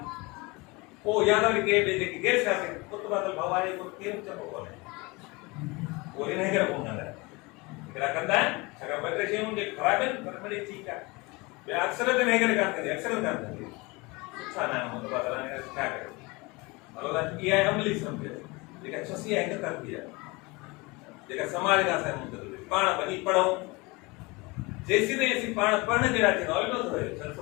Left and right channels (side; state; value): right; quieter; 25.1 dB